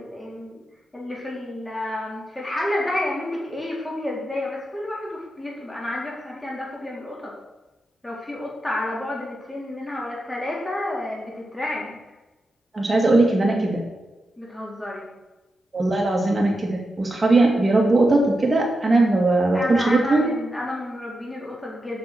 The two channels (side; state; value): both; normal; correlation 0.89